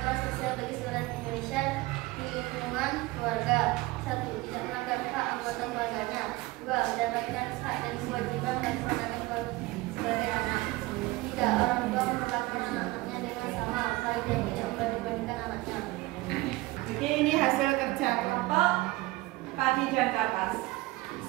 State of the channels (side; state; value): left; quieter; 20.4 dB